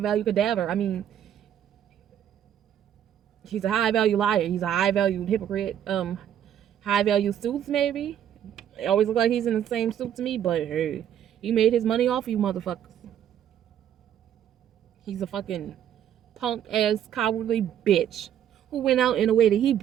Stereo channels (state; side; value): quieter; left; 10.0 dB